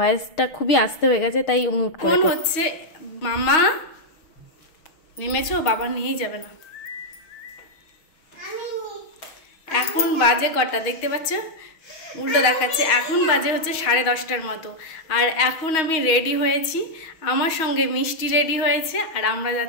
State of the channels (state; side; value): late; right; 6.3 ms